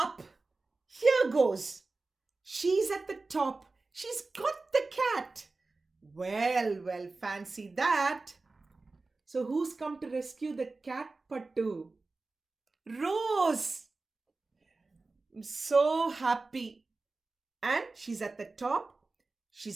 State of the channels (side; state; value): left; quieter; 3.6 dB